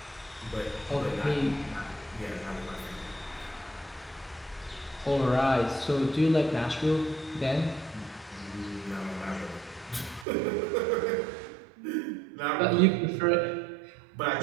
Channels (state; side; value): drops out; left; at 10.2 s